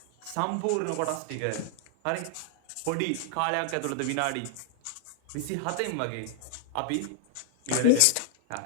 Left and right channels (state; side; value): different; both; correlation 0.00